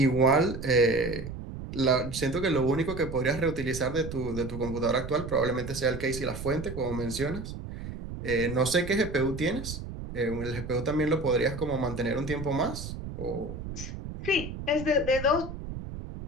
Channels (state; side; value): noise; right; rumble, 9 dB below the sound